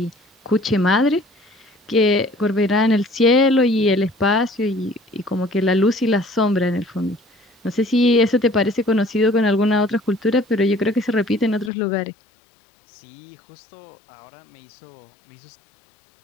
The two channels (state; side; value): drops out; right; at 11.7 s